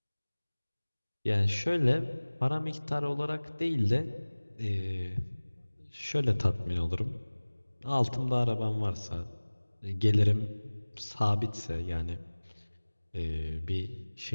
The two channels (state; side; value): inverted; both; correlation -1.00